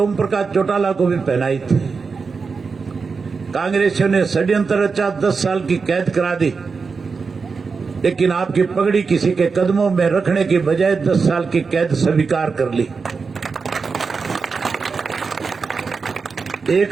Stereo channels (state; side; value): quieter; left; 4.9 dB